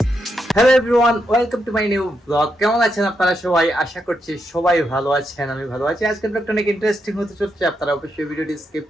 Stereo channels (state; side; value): normal; both; correlation 0.82